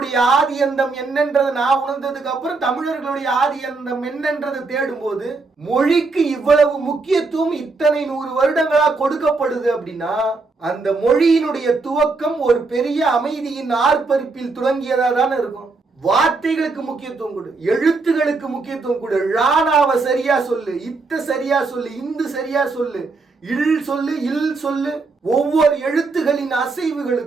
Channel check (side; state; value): left; quieter; 3.9 dB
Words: ஆதி அந்தம் என்னன்றது நான் உணர்ந்ததுக்கு அப்புறம் தமிழர்களுடைய ஆதி அந்தம் என்னன்றது தேடும் போது மொழிக்கு இவ்வளவு முக்கியத்துவம் இத்தனை 100 வருடங்களா கொடுக்கப்படுது அப்படின்னா அந்த மொழியினுடைய துவக்கம் ஒரு பெரிய அமைதியின் ஆர்ப்பரிப்பில் தொடங்கியதா தானே இருக்கும். வார்த்தைகளுக்கு முக்கியத்துவம் கொடு, எழுத்துகளுக்கு முக்கியத்துவம் கொடு, ராணாவை சரியா சொல்லு, இத்த சரியா சொல்லு, இந்து சரியா சொல்லு, இல் சொல்லு, இல் சொல்லு. ஒவ்வொரு எழுத்துகளின்